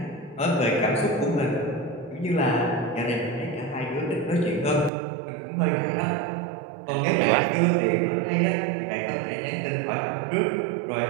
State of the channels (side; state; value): left; drops out; at 4.9 s